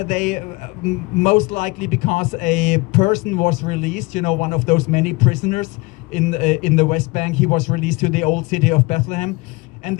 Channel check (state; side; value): quieter; right; 24.6 dB